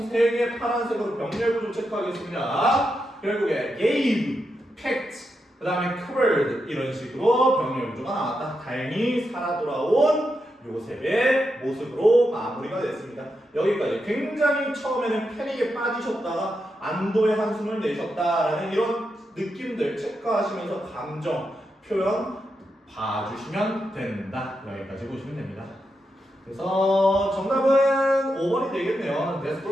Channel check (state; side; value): normal; both; correlation 0.86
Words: 3개 파란색으로 병렬 구조 체크하겠습니다. 결국에 gave, packed, 그 다음에 covered 이런 식으로 병렬 구조가 나왔다. 다행히 살아 돌아온 요셉의 모습으로 마무리가 됐습니다. 여기까지 굉장히 처음에는 패닉에 빠지셨다가 안도의 한숨을 내셨다라는 이런 느낌들 체크하시면서 감정 표현 봐주시면 된다. 여기까지 보시면 됩니다. 그래서 정답은 5번이 되겠네요.